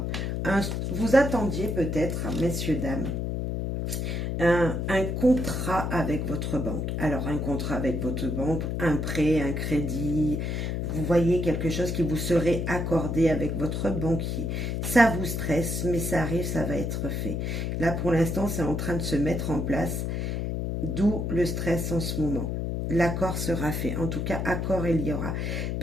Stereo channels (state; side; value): noise; left; hum, 1 dB below the sound